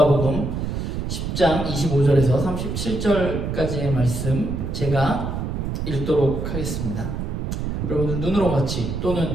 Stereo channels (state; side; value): noise; right; rumble, 3 dB below the sound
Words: 10장 25절에서 37절까지의 말씀 제가 읽도록 하겠습니다. 여러분들 눈으로 같이